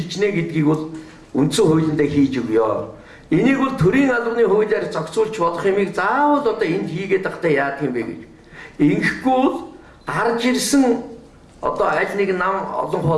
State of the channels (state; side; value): identical; both; correlation 1.00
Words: гэдгийг бол үндсэн хуулиндаа хийж өгөө. Энийг бол төрийн албаны хуулиар зохицуулж болох юмыг заавал одоо энд хийгээд байхдаа яах юм бэ гэж. Ингэхгүй бол гарч ирсэн одоо аль нэг нам олон